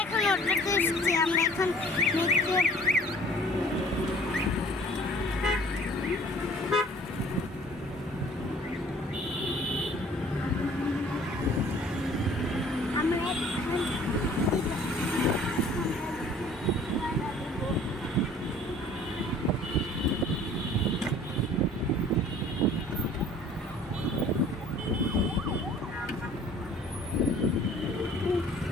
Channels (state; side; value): normal; both; correlation 0.51